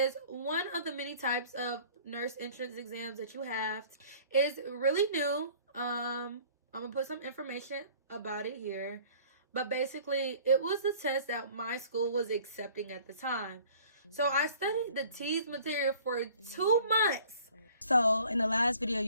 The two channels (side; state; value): both; inverted; correlation -0.51